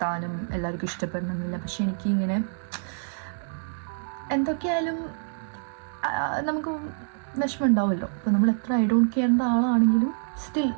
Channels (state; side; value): silent; left; digital silence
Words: എല്ലാവർക്കും ഇഷ്ടപ്പെടണമെന്നില്ല. പക്ഷെ എനിക്കിങ്ങനെ എന്തൊക്കെയായാലും നമുക്ക് വിഷമം ഉണ്ടാവുമല്ലോ. അപ്പോൾ നമ്മൾ എത്ര ഐ ഡോണ്ട് കെയറിൻ്റെ ആളാണെങ്കിലും സ്റ്റിൽ